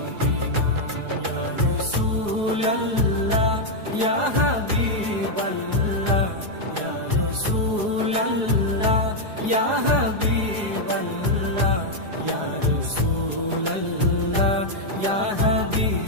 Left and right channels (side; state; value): left; late; 4.8 ms